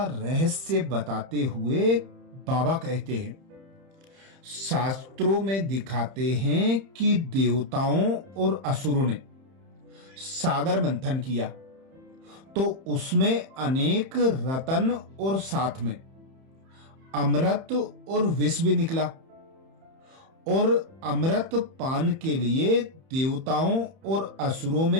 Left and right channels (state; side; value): late; left; 31 ms